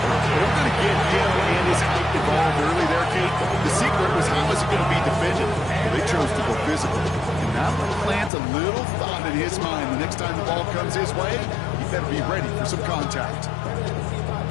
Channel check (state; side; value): drops out; right; at 8.3 s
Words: They were going to get him and his height involved early there, Kate. The secret was how is he going to be defended? Well, they chose to go physical. And that will plant a little thought in his mind the next time the ball comes his way. He better be ready for some contact.